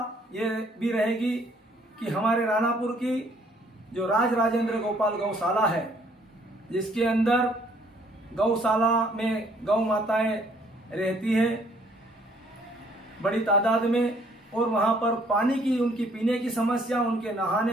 ये भी रहेगी कि हमारे रानापुर की जो राज राजेंद्र गोपाल गौशाला है, जिसके अंदर गौशाला में गौ माताएं रहती है बड़ी तादाद में, और वहां पर पानी की उनकी पीने की समस्या, उनके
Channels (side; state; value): both; normal; correlation 0.63